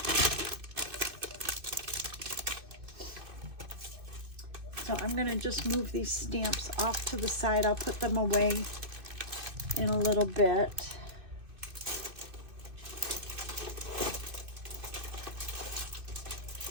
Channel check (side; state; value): left; late; 2.6 ms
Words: So I'm going to just move these stamps off to the side. I'll put them away in a little bit.